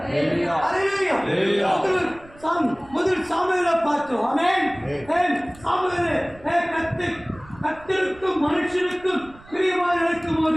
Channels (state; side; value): noise; right; rumble, 23 dB below the sound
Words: ஹalleluya. முதல் சாமுவேலை பார்த்தோம். ஆமென். சாமுவேலே கர்த்தருக்கும் மனுஷனுக்கும் பிரியமாக இருக்கும்